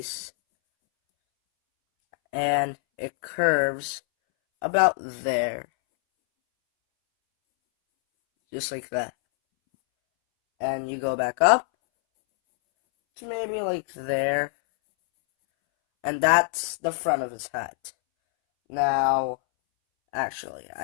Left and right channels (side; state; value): right; silent; 62 dB below the other